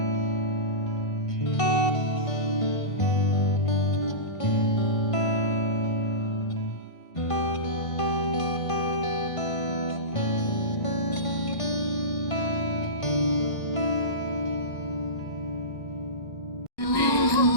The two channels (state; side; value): late; right; 1.5 ms